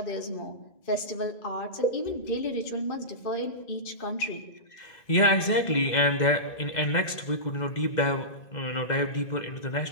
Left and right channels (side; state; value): right; late; 2.0 ms